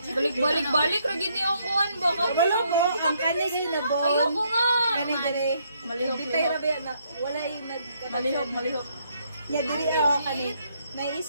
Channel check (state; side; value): inverted; both; correlation -0.72